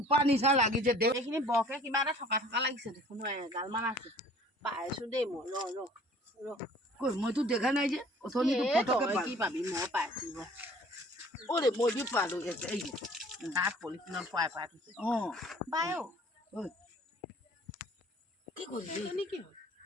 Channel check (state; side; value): normal; both; correlation 0.51